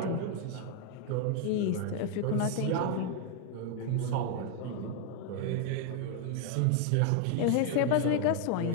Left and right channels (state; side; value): different; both; correlation 0.00